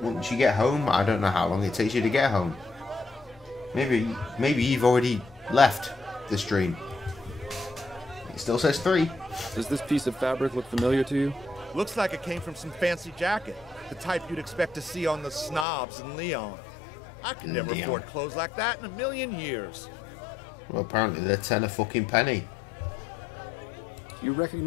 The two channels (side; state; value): right; drops out; at 15.7 s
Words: once you get home? I don't know how long it takes you to get home. Maybe you've already left the stream. It still says 3. Does this piece of fabric look familiar to you? Looks like it came from some fancy jacket. The type you'd expect to see on the snobs in Leon. I could never afford clothes like that in a million years. Well, apparently they're 10 a fucking penny. Do you